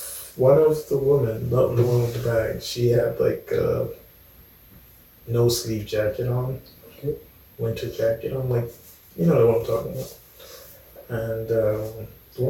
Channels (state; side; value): identical; both; correlation 1.00